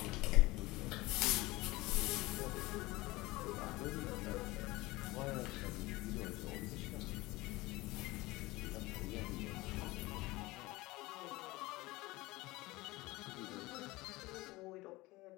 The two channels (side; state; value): right; quieter; 20.6 dB